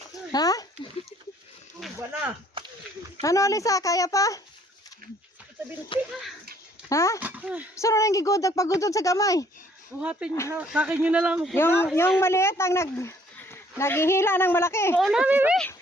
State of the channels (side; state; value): both; normal; correlation 0.62